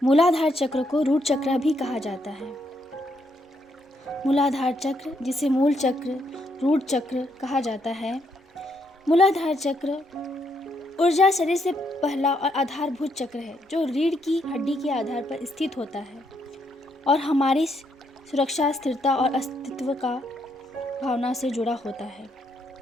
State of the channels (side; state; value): both; normal; correlation 0.75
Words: मूलाधार चक्र को रूट चक्र भी कहा जाता है। मूलाधार चक्र, जिसे मूल चक्र, रूट चक्र कहा जाता है। मूलाधार चक्र ऊर्जा शरीर से पहला और आधारभूत चक्र है, जो रीढ़ की हड्डी के आधार पर स्थित होता है और हमारी सुरक्षा, स्थिरता और अस्तित्व का भावना से जुड़ा होता है।